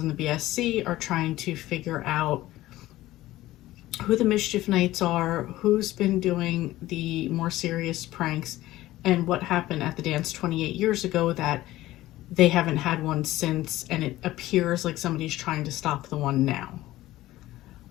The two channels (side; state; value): right; quieter; 16.2 dB